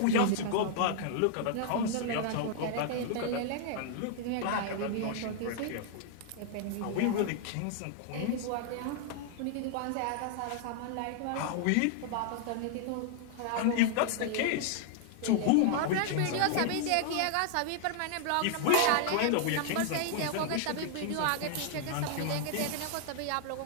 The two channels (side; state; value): both; different; correlation 0.00